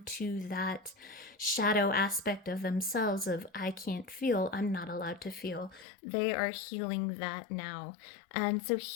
to that shadow aspect of themselves of I can't feel, I'm not allowed to feel. They are healing that now. And so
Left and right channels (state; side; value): drops out; right; at 5.9 s